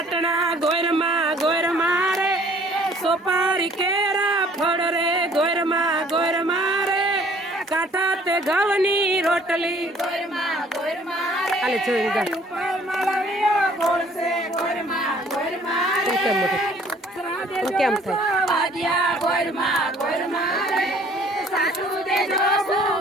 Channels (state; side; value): normal; both; correlation 0.56